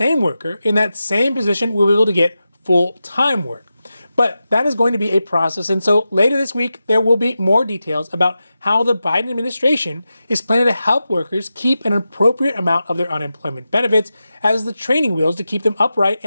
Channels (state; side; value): inverted; both; correlation -0.91